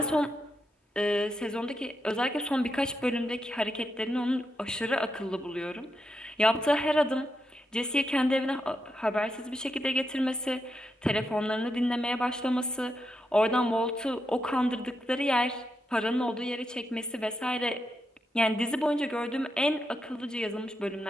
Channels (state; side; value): normal; both; correlation 0.84